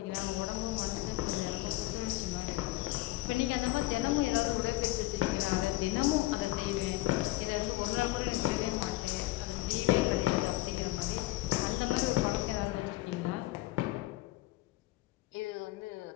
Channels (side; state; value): right; quieter; 18.7 dB